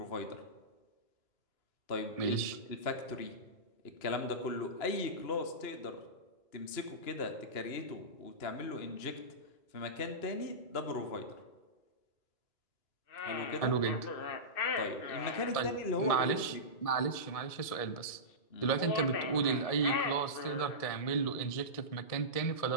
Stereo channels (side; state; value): right; late; 1.7 ms